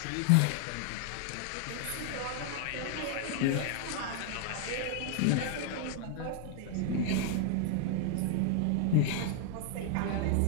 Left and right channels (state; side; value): different; both; correlation 0.00